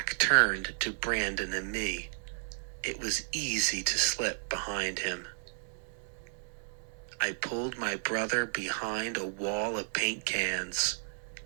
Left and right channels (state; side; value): silent; left; 56 dB below the other